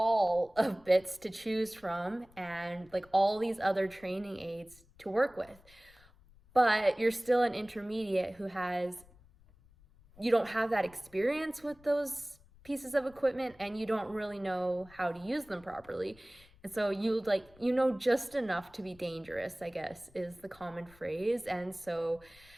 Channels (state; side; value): noise; left; rumble, 26 dB below the sound